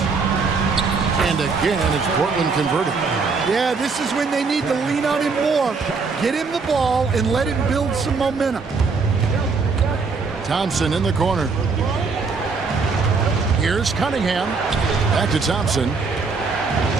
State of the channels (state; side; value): quieter; left; 4.6 dB